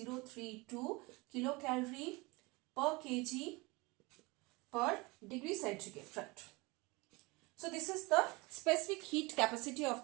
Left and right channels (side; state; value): left; quieter; 24.8 dB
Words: kilocalorie per kg per degree centigrade. Right. So this is the specific heat capacity